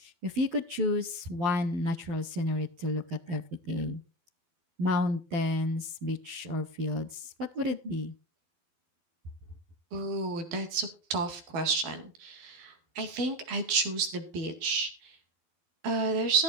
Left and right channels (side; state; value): left; late; 12 ms